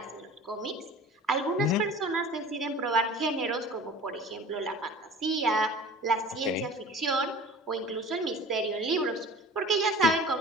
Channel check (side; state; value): both; normal; correlation 0.41